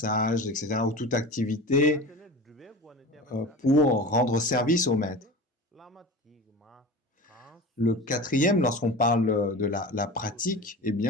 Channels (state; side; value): normal; both; correlation 0.33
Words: etc., ou toute activité pour rendre service au maître. Le quatrième, lorsqu'on parle de la pratique, eh